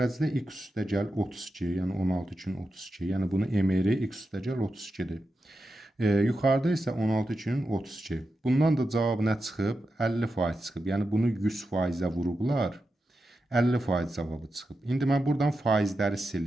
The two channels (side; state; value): both; normal; correlation 0.89